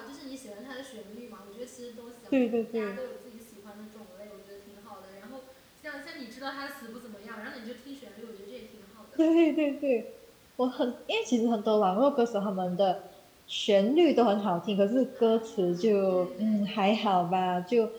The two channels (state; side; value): identical; both; correlation 1.00